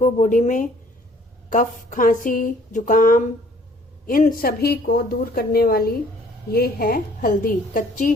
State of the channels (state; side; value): normal; both; correlation 0.57